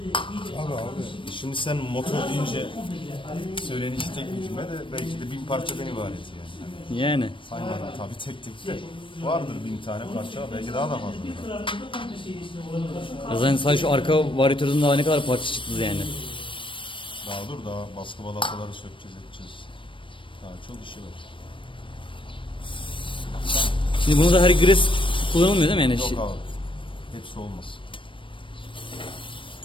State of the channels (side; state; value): right; late; 0.25 ms